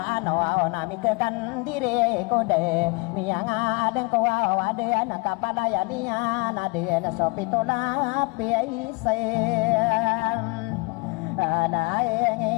ano nami kekan diri kode miang adeng kawa ade anak kapalaya dia nade sopitola piaisen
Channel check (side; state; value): right; quieter; 28.1 dB